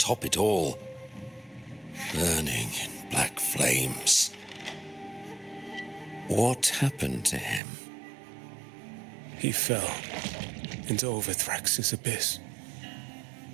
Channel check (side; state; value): left; drops out; at 7.6 s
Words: it all, burning in black flames. What happened to him? He fell into Overthrax's abyss.